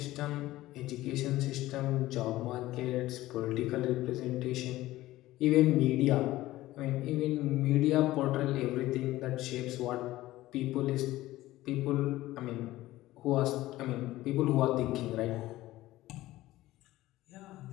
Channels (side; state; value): right; quieter; 16.6 dB